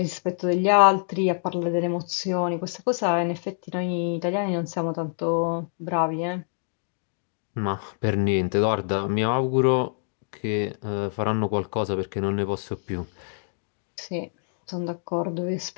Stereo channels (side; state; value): right; silent; digital silence